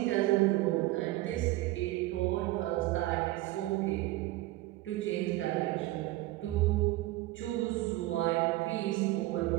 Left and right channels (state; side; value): quieter; left; 17.9 dB